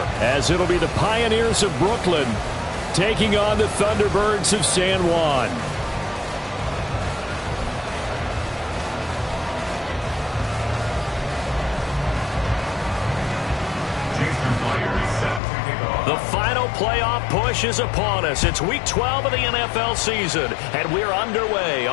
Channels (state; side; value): drops out; right; at 15.4 s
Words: as it'll be the Pioneers of Brooklyn taking on the Thunderbirds of San Juan. The final playoff push is upon us. It's week 12 of the NFL season, and we're underway